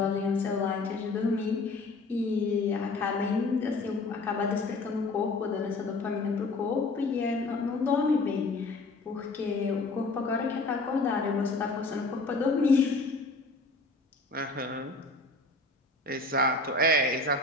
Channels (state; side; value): quieter; right; 3.2 dB